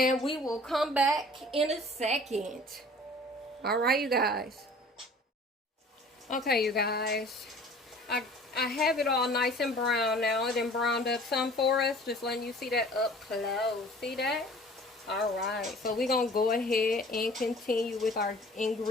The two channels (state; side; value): normal; both; correlation 0.48